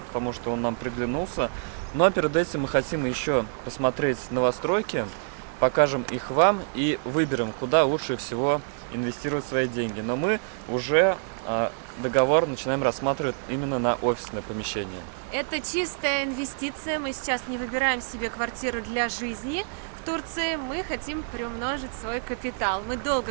потому что он нам приглянулся. Но перед этим мы хотим еще посмотреть новостройки, покажем их вам и выберем, куда лучше всего инвестировать свои деньги. Но мы уже договор начинаем рассматривать именно на офисное помещение. Это чистая инвестиция, мы сейчас не выбираем себе квартиру для жизни в Турции, мы хотим приумножить свой капитал. Мы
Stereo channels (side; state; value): left; silent; digital silence